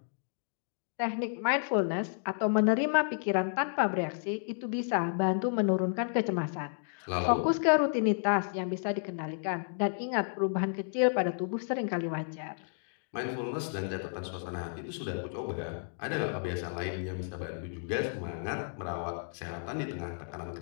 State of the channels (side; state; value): right; silent; digital silence